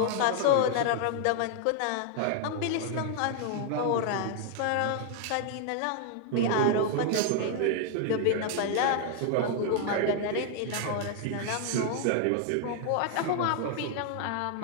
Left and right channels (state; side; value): different; both; correlation 0.00